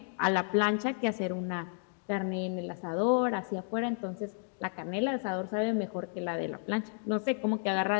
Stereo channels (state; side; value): silent; right; 56 dB below the other